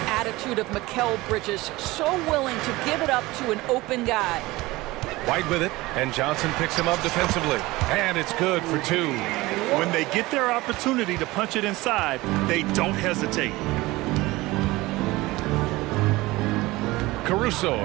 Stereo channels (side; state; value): left; quieter; 20.1 dB